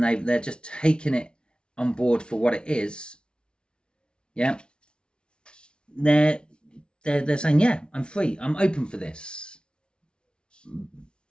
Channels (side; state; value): right; late; 0.056 ms